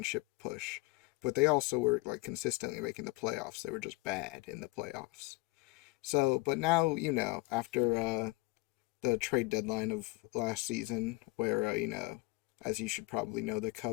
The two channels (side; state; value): right; quieter; 23.4 dB